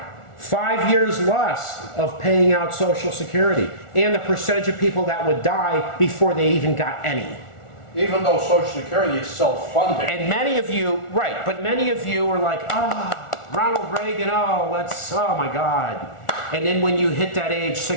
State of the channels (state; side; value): late; right; 1.4 ms